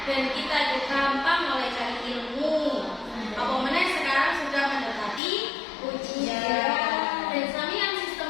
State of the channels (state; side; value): drops out; right; at 5.2 s